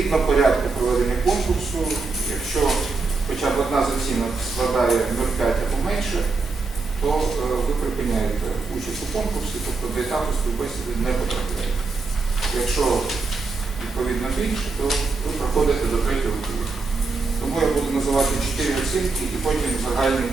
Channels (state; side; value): quieter; left; 4.1 dB